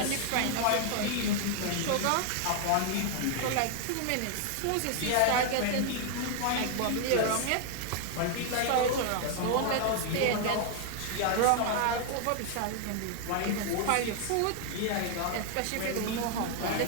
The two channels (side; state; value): both; different; correlation 0.00